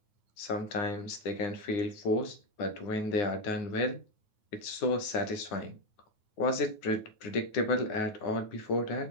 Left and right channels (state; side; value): late; right; 9.4 ms